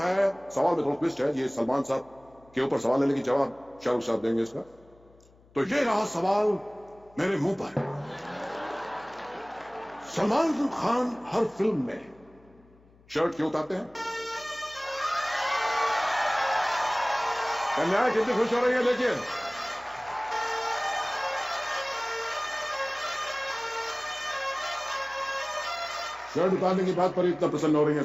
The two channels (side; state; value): left; noise; hum, 28 dB below the sound